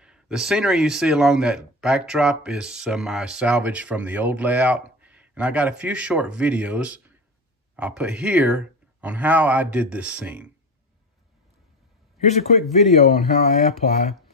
The scenery you see along that backdrop is some I salvaged from the old layout. And I got a few short videos I'll put here on how I did this scene. Here's a quick video on how I apply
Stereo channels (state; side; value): normal; both; correlation 0.25